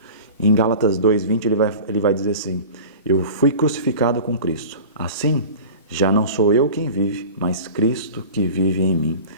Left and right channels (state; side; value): inverted; both; correlation -0.37